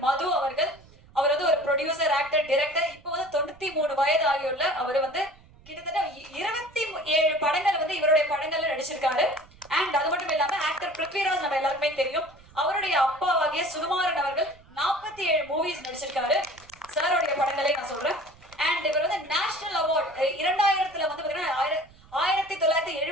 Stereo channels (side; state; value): right; noise; rumble, 25 dB below the sound